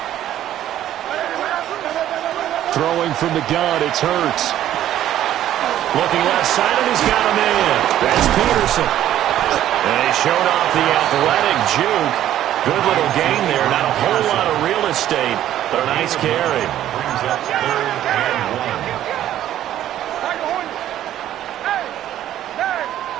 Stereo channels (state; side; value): quieter; left; 12.2 dB